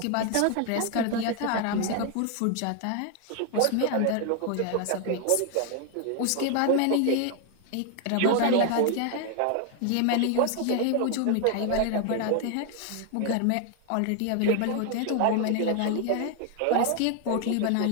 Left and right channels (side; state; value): both; different; correlation 0.00